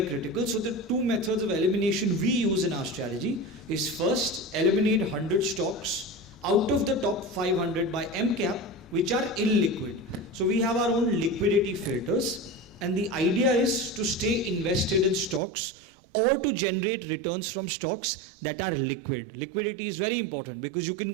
critical. So the two methods of elimination we use in our strategy is first, eliminate 100 stocks out of the top 500 by MCAP, which are illiquid. So we have our own liquidity filters, and the idea is to stay invested in stocks or to generate returns from stocks that are liquid. Liquidity is very important because you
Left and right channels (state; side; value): drops out; left; at 15.4 s